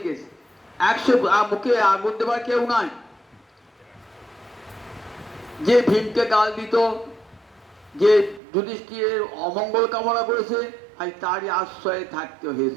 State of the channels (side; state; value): left; drops out; at 8.4 s